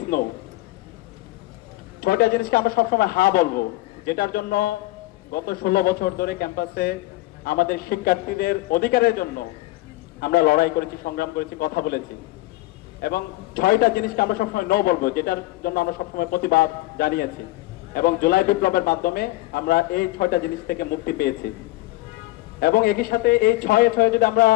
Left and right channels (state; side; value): quieter; right; 19.3 dB